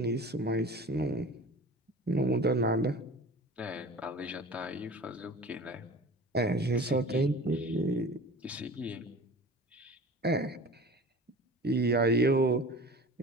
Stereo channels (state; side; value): normal; both; correlation 0.39